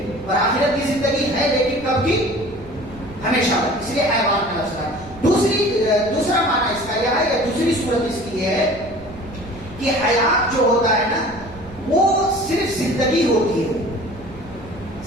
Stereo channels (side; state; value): right; noise; rumble, 18 dB below the sound